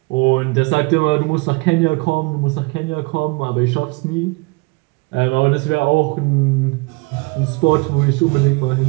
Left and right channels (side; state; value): left; quieter; 28.1 dB